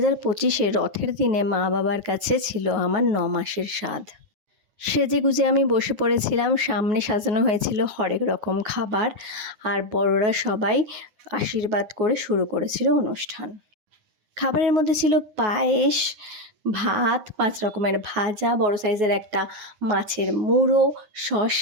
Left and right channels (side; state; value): left; late; 9.8 ms